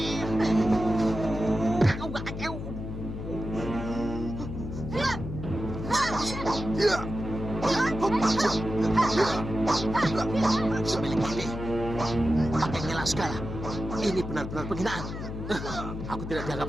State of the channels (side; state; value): left; noise; hum, 7 dB below the sound